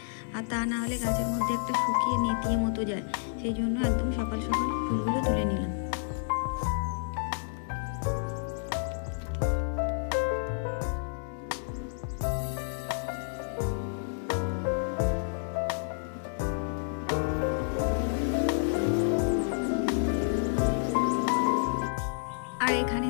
আর তা না হলে গাছের মধ্যে একটা শুকিয়ে নেতিয়ে মতো যায়। সেই জন্য একদম সকাল সকাল ফুলগুলো তুলে নিলাম। আর এখানে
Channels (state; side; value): silent; right; digital silence